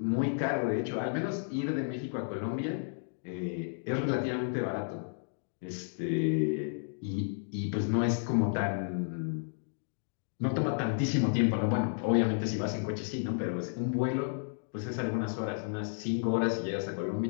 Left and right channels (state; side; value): silent; right; digital silence